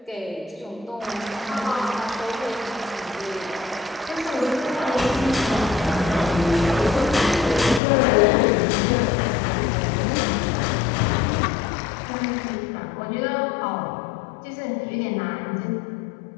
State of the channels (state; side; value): drops out; right; at 7.8 s